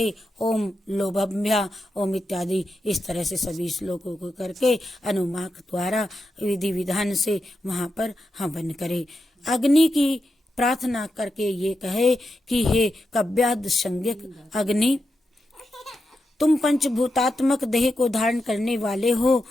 ओम लोभभ्या ओम इत्यादि इस तरह से सभी श्लोकों को करके अनुमाक द्वारा विधि विधान से वहां पर हवन करे। अग्नि की प्रार्थना करके ये कहे कि हे कव्याद संज्ञक अग्नि, तुम पंचभूतात्मक देह को धारण करने वाले हो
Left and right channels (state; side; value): normal; both; correlation 0.87